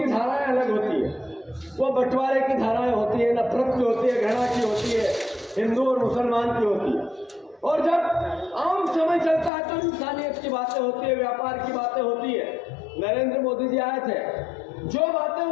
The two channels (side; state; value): right; drops out; at 9.5 s